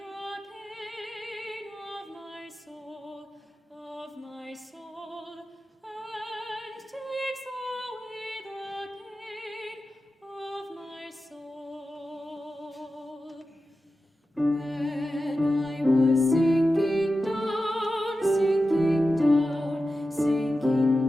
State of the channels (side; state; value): both; normal; correlation 0.92